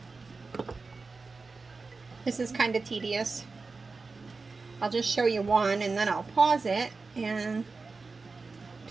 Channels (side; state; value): left; quieter; 4.1 dB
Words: This is kind of tedious. I'll just show you one and then I'll pause it and